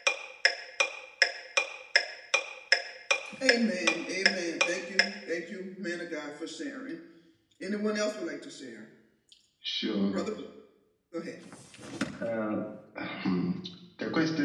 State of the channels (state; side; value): identical; both; correlation 1.00